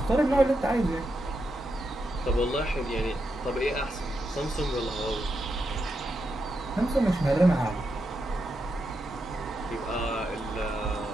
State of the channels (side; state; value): both; normal; correlation 0.85